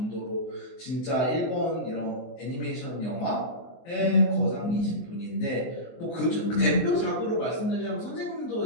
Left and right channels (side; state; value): right; late; 24 ms